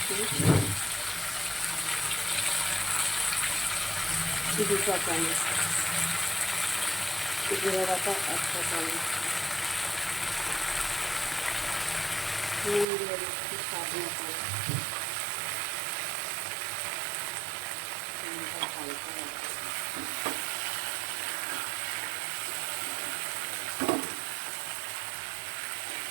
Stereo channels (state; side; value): drops out; left; at 12.9 s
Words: 2 চা চামচ, জিরে বাটা 1 চা চামচ, নুন দিয়ে দিচ্ছি স্বাদ মতো। হালকা